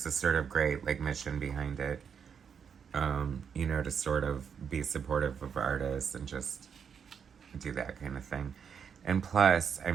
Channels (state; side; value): quieter; left; 7.0 dB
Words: this sort of great, like, mission behind it, you know, to sort of be supportive of artists and just do that kind of thing. And plus,